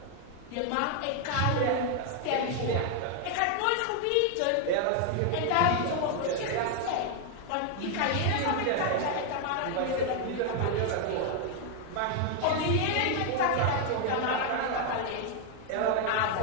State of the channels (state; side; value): different; both; correlation 0.00